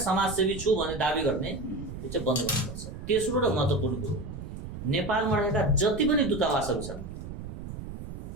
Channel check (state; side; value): noise; right; rumble, 10 dB below the sound